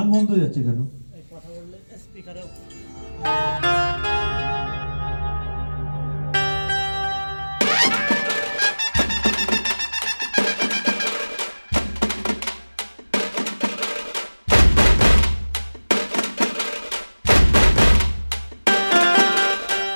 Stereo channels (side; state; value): both; inverted; correlation -1.00